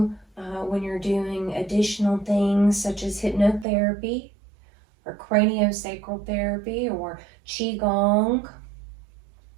when you're doing additional things such as hypnotherapy or craniosacral therapy or qigong.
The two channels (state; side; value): drops out; left; at 3.7 s